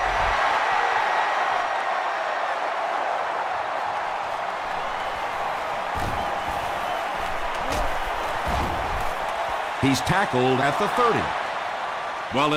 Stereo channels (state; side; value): identical; both; correlation 1.00